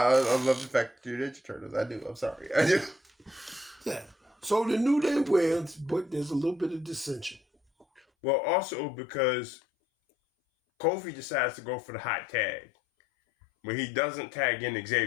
love the fact that you're Ninja Turtles. I do. I'm sorry. I do. Yeah. So the New Day wins, but there's a little bit of dissension. Well, also because Kofi decides to go for the hot tag. When he doesn't tag in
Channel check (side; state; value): right; drops out; at 8.0 s